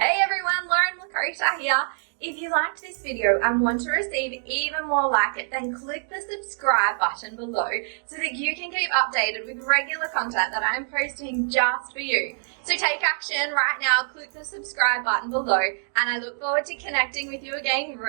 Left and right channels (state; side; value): silent; left; digital silence